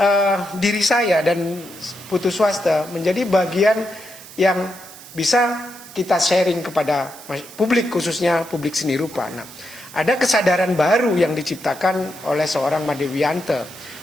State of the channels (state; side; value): noise; right; hiss, 18 dB below the sound